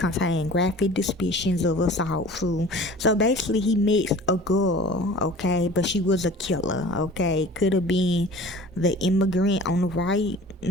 graphic descriptions of assault. So basically, he met a girl, okay, but she was a killer, okay. Could have been the immigrant on the right,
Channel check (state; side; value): normal; both; correlation 0.43